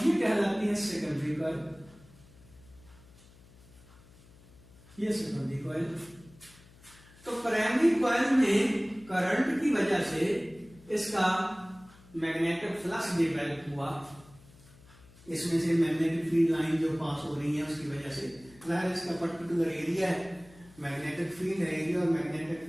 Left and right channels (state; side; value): noise; left; hum, 24 dB below the sound